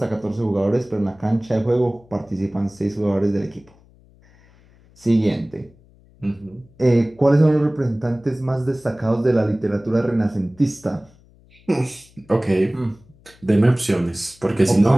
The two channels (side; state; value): left; noise; hum, 28 dB below the sound